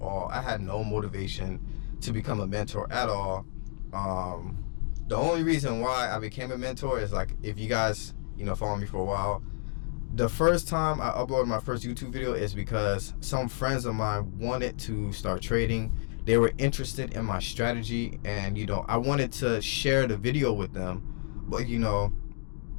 all. I had no motivation to become a mentor at all. The only reason why I became a mentor is like, if you guys, you know, follow me for a while, the first time I uploaded my first YouTube video is because some friends of mine wanted to start trading. They were interested in my strategy, and you know, I wanted to share the video with them, but you know,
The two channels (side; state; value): right; silent; 58 dB below the other